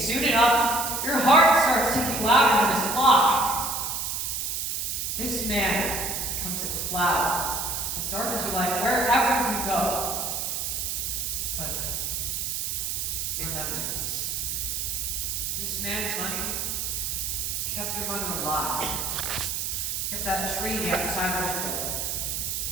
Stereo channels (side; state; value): right; noise; hiss, 1 dB below the sound